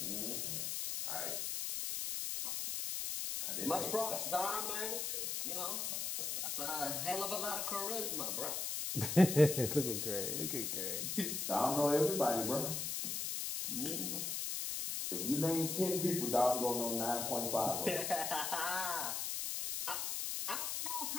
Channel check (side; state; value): left; noise; hiss, 2 dB below the sound